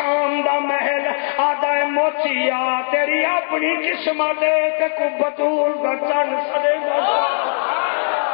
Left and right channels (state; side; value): silent; right; digital silence